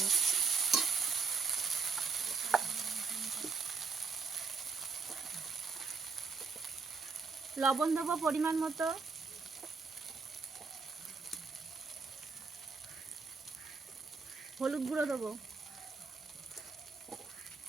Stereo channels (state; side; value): quieter; left; 4.6 dB